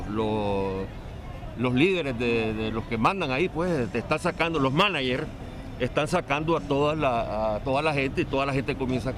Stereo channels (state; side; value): identical; both; correlation 1.00